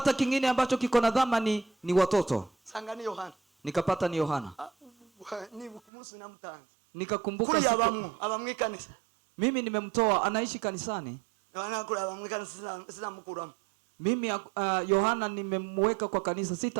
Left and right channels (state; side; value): drops out; left; at 5.8 s